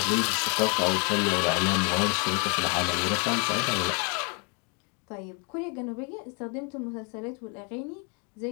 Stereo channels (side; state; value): right; quieter; 35.7 dB